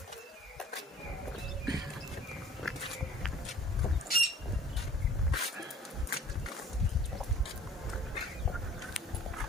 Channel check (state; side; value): normal; both; correlation 0.50